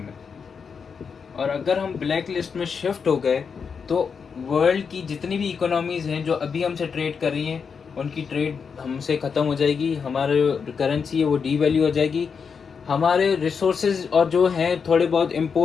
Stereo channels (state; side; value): quieter; right; 6.0 dB